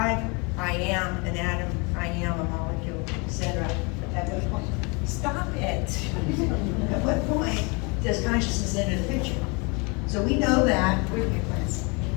I am an atom, I am a molecule, etc. At what point? Stop it. At what point does consciousness enter the picture? So we know that, where's my plants?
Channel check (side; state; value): right; quieter; 30.6 dB